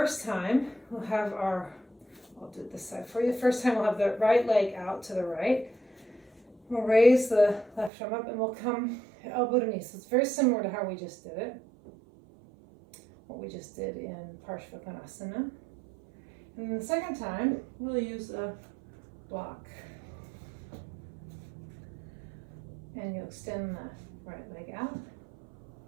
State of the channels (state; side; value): drops out; left; at 7.9 s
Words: time we'll have I'll do it this side for you. The first time we'll have the right leg out to the right. We'll raise the left arm up and we'll come elbow to knee. So it's very similar to how we just did it. What we just did in Parshvakonasana. And then the second time, we'll use a block. And you'll extend the right leg out.